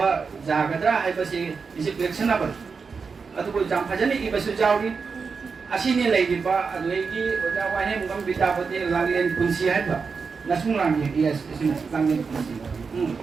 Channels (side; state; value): left; quieter; 5.2 dB